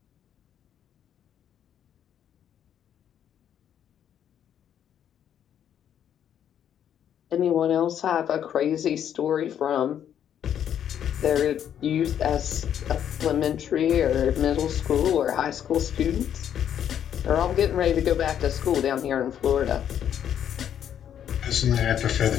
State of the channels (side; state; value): right; quieter; 9.6 dB